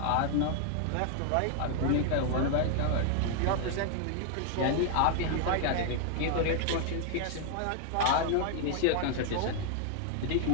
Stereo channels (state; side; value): different; both; correlation 0.00